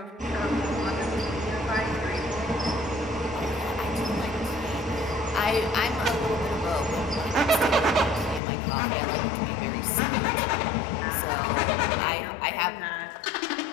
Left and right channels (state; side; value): drops out; right; at 8.4 s